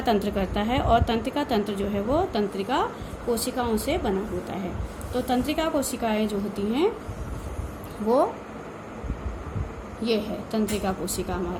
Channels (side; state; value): both; identical; correlation 1.00